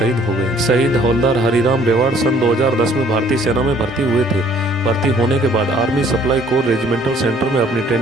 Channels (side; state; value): both; normal; correlation 0.58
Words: हो गए। शहीद हवलदार हरिराम रेवाड़ सन 2010 में भारतीय सेना में भर्ती हुए थे। भर्ती होने के बाद army supply core regimental centre में अपनी